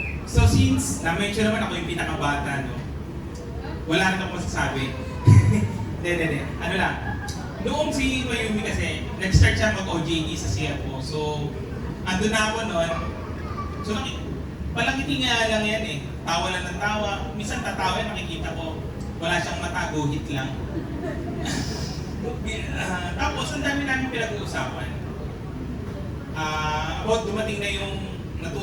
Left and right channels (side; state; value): both; identical; correlation 1.00